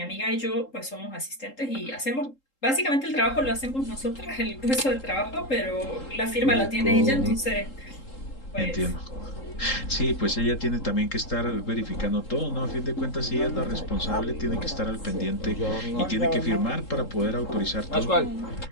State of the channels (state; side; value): late; right; 3.8 ms